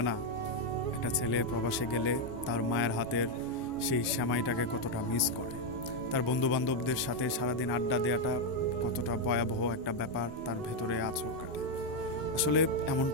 না একটা ছেলে প্রবাসে গেলে তার মায়ের হাতের সেই সেমাইটাকে কতটা মিস করে। তার বন্ধু বান্ধবদের সাথে সারাদিন আড্ডা দেওয়াটা কতটা ভয়াবহ একটা ব্যাপার তার ভেতরে আছর কাটে। আসলে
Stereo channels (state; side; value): normal; both; correlation 0.03